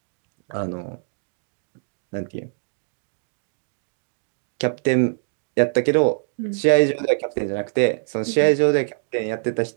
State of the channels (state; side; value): silent; left; digital silence